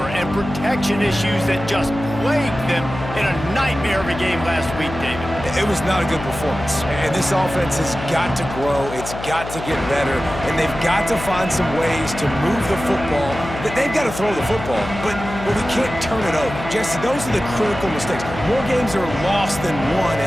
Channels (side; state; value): left; noise; hum, 10 dB below the sound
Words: and protection issues that just plagued them in a nightmare of a game last week, David. It was not a good performance. And this offense has got to grow. It's got to get better. And they've got to find some ways to move the football. They've got to throw the football, but we can't turn it over. Jesse, those are the critical mistakes. More games are lost than won.